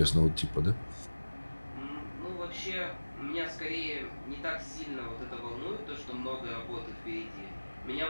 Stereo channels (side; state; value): both; inverted; correlation -1.00